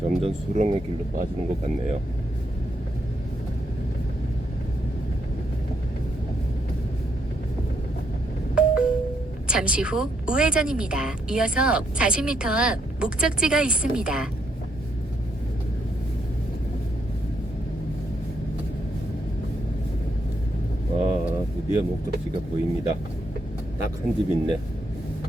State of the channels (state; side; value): normal; both; correlation 0.76